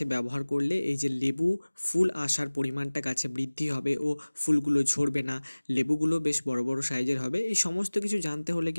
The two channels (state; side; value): inverted; both; correlation -1.00